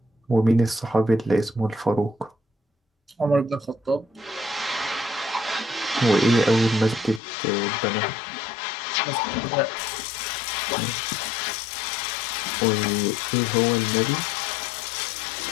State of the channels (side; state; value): right; drops out; at 7.2 s